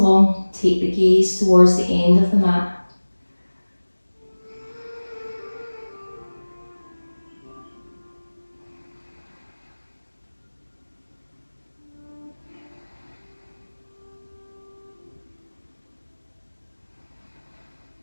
Take the gaze towards the end of the mat.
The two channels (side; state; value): both; inverted; correlation -1.00